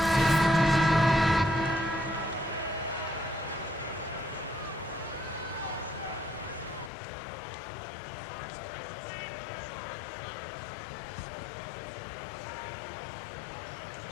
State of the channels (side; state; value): right; drops out; at 6.9 s